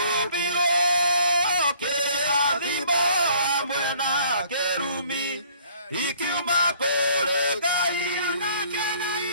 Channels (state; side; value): inverted; both; correlation -0.58